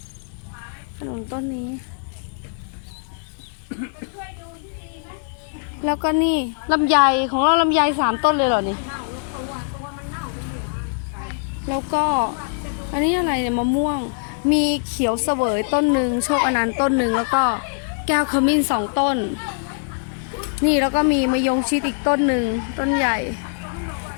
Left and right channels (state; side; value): silent; right; 64 dB below the other